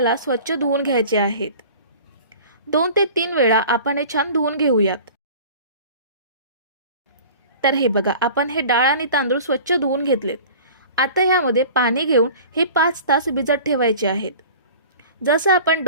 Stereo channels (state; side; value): inverted; both; correlation -0.41